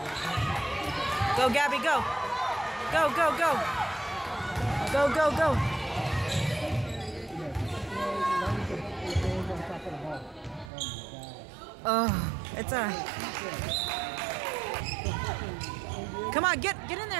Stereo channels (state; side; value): drops out; left; at 10.7 s